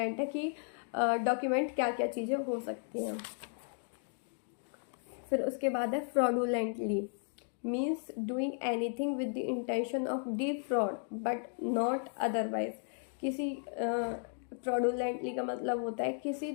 है कि डॉक्यूमेंट क्या क्या चीज़ें हो सकती हैं। फिर उसके बाद है fraudulently, means doing anything with the intention of defrauded but not otherwise. किसी फ्रॉडुलेंटली का मतलब होता है किसी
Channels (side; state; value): right; silent; 55 dB below the other